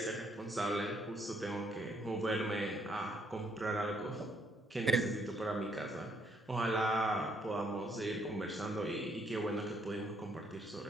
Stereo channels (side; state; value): both; normal; correlation 0.70